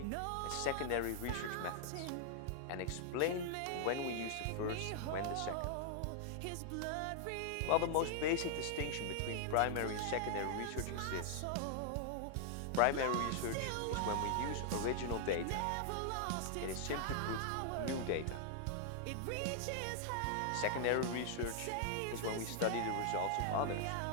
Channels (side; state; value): both; different; correlation -0.01